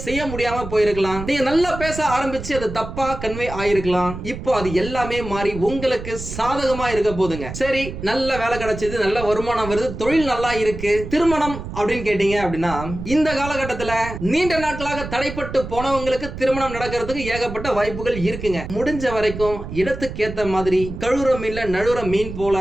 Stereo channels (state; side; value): noise; right; rumble, 9 dB below the sound